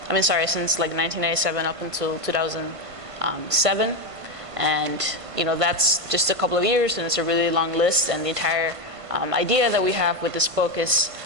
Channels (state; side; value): late; left; 1.5 ms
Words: since 1997 up until 2007. And that's just a couple of years, and it's a really long list. And the entire idea that we have with this book is